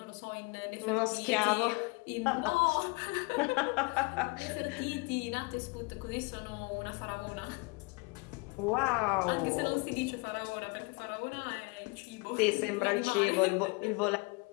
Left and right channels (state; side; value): quieter; right; 28.5 dB